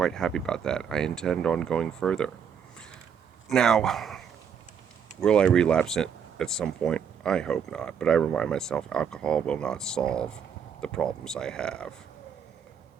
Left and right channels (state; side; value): quieter; left; 7.5 dB